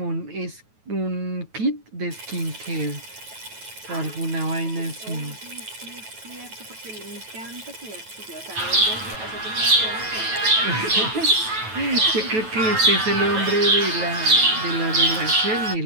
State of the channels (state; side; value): late; left; 9.2 ms